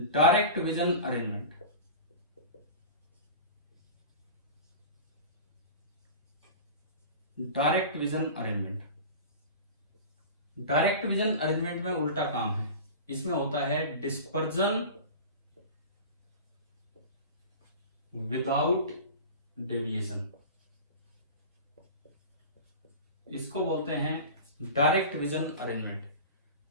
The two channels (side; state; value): both; inverted; correlation -0.34